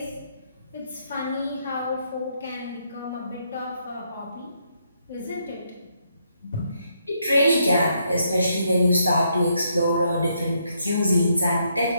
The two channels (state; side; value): inverted; both; correlation -0.75